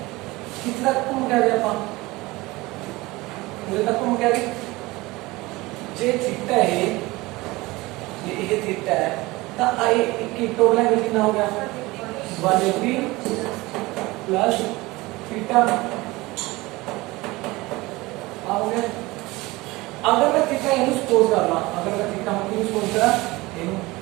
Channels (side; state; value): left; quieter; 21.2 dB